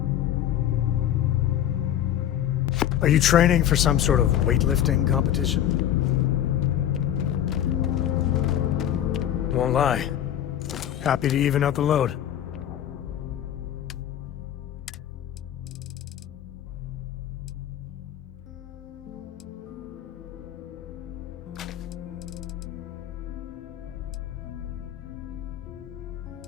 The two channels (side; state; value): right; quieter; 11.0 dB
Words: Are you training for some sort of weightlifting competition? Won't lie. Happy to even out the load.